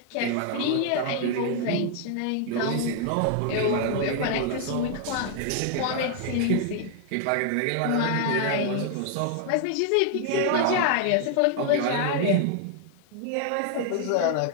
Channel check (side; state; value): both; different; correlation 0.00